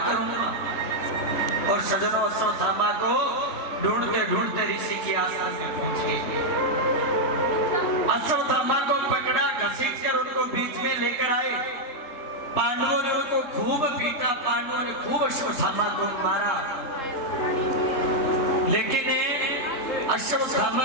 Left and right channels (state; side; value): late; right; 3.8 ms